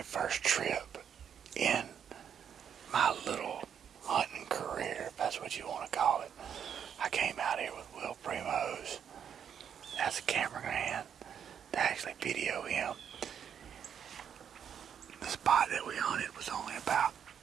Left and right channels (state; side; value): quieter; left; 8.2 dB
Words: first trip in my little hunting career, if that's what you want to call it. I came out here with Will Primos as a cameraman to actually video him. The spot that we hunted was only about